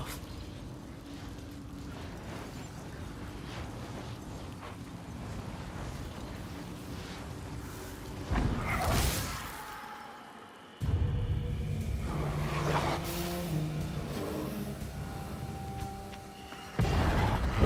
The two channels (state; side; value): identical; both; correlation 1.00